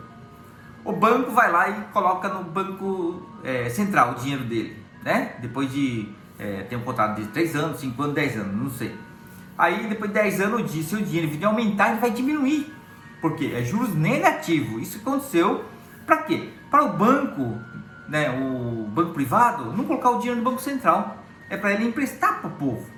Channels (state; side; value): identical; both; correlation 1.00